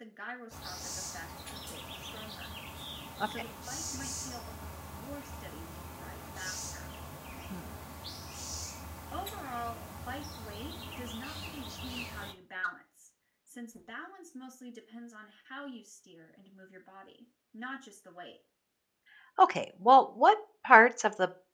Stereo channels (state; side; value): identical; both; correlation 1.00